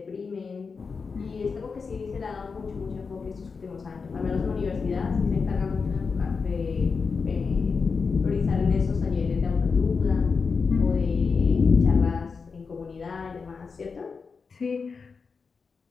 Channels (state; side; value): quieter; right; 5.1 dB